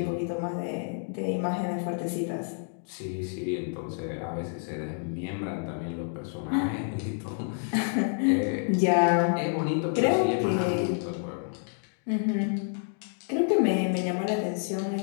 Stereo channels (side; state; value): right; silent; 59 dB below the other